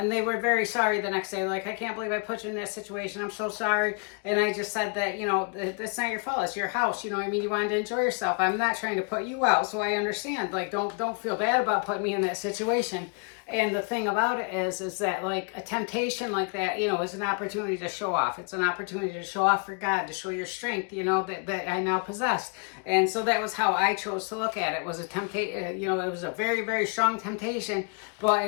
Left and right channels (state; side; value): quieter; right; 37.6 dB